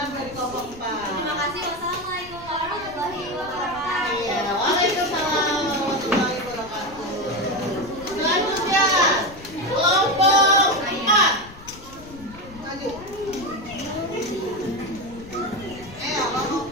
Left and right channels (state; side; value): noise; left; rumble, 18 dB below the sound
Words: dari kelompok 4. Terima kasih. Wassalamualaikum warahmatullahi wabarakatuh. Iya, waalaikumsalam warahmatullahi wabarakatuh. Selanjutnya, kelompok 4. Maju. Kelompok